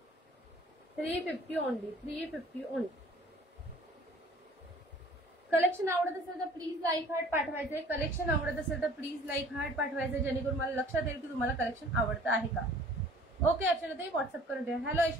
350 ओनली. 350 ओनली. कलेक्शन आवडत असेल तर प्लीज लाईक हार्ट पाठवायचे. कलेक्शन आवडत असेल तर प्लीज लाईक हार्ट पाठवायचे, जेणेकरून मला लक्षात येईल की तुम्हाला कलेक्शन आवडतं आहे का. ओके अर्चनाताई, व्हॉट्सअप करून द्या. हॅलो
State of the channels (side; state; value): both; normal; correlation 0.51